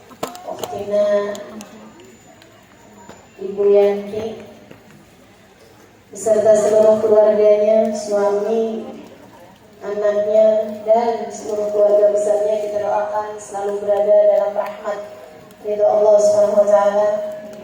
Ukhtina Ibu Yanti beserta seluruh keluarganya, suami, anaknya, dan seluruh keluarga besarnya. Kita doakan selalu berada dalam rahmat ridho Allah Subhanahu wa taala.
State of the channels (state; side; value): identical; both; correlation 1.00